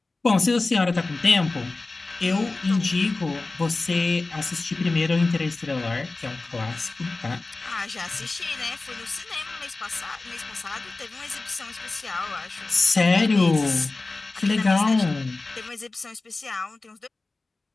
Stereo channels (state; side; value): quieter; right; 3.4 dB